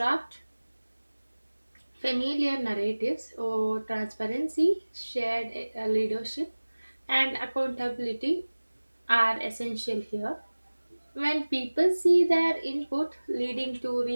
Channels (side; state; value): both; inverted; correlation -1.00